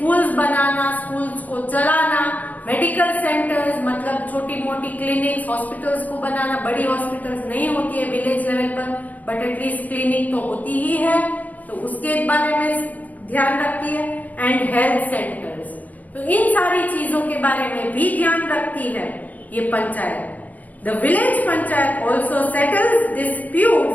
बनाना, स्कूल्स को चलाना, मेडिकल सेंटर्स मतलब छोटी मोटी क्लिनिक्स, हॉस्पिटल्स को बनाना। बड़ी हॉस्पिटल्स नहीं होती है विलेज लेवल पर, बट एटलीस्ट क्लिनिक तो होती ही है, तो उसके बारे में ध्यान रखती है। एंड हेल्थ सेंटर्स, तो इन सारी चीजों के बारे में भी ध्यान रखती है ये panchayat. The village panchayat also settles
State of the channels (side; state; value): right; late; 0.078 ms